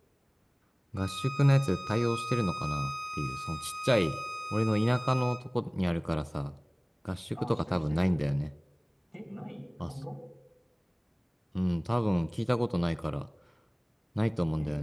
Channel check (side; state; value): both; identical; correlation 1.00